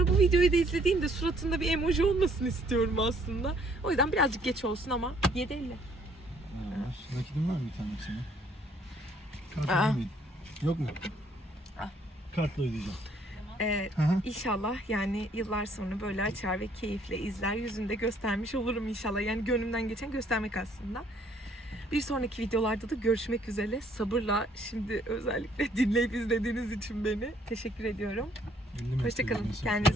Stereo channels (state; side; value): normal; both; correlation 0.63